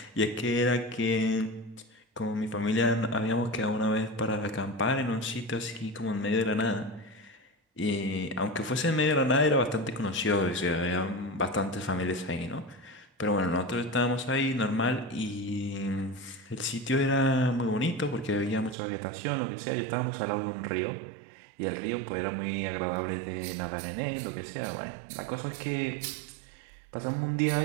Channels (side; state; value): left; drops out; at 18.8 s